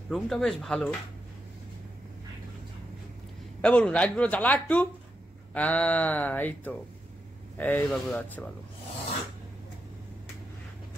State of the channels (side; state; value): both; normal; correlation 0.85